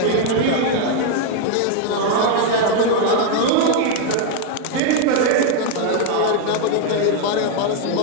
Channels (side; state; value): both; different; correlation 0.00